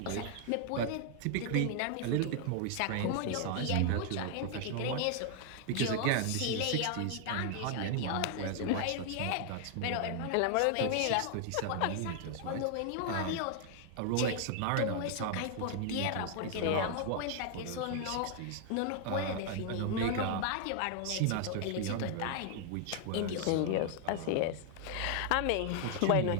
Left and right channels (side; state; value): both; different; correlation 0.00